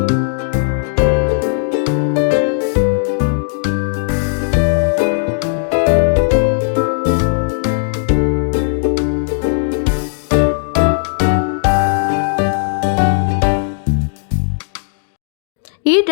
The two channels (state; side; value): silent; right; digital silence